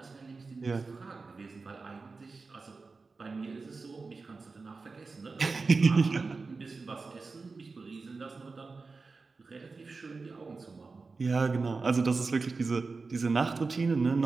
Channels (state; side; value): quieter; left; 4.1 dB